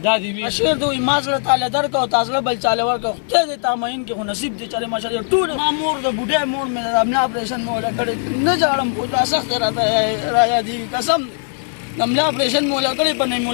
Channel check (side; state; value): right; silent; 66 dB below the other